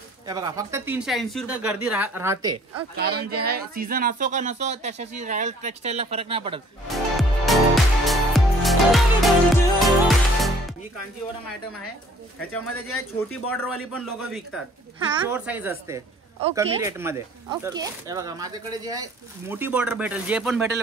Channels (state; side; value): normal; both; correlation 0.56